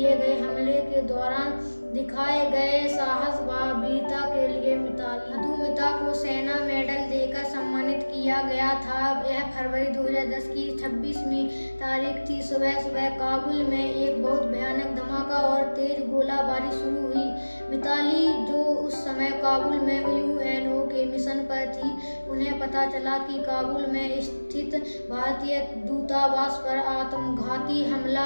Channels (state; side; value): inverted; both; correlation -1.00